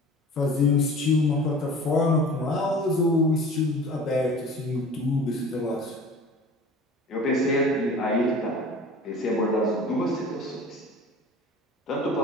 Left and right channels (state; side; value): normal; both; correlation 0.42